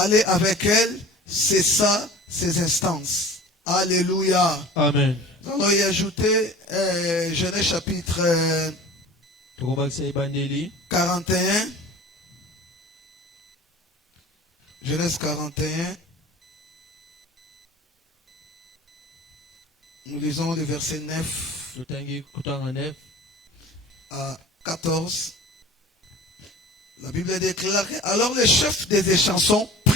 aller avec elle, cessa ses instances. Alléluia. Amen. Nous allons y ajouter Genèse chapitre 41. Genèse 41. Nous lisons le verset 9 à 14. La Bible déclare, alors le chef des échansons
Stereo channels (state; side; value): normal; both; correlation 0.41